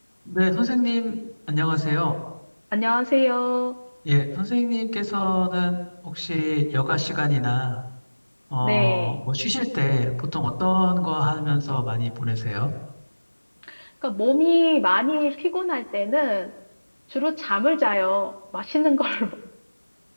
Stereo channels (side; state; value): both; inverted; correlation -1.00